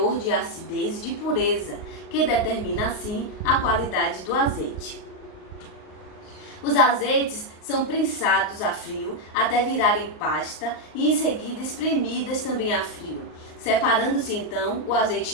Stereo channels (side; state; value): right; late; 38 ms